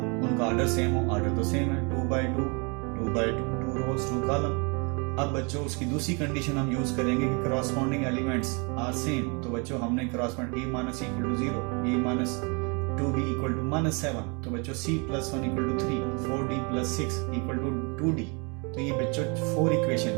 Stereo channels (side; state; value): left; quieter; 32.4 dB